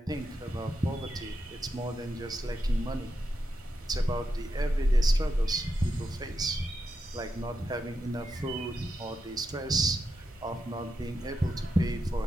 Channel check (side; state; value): both; normal; correlation 0.86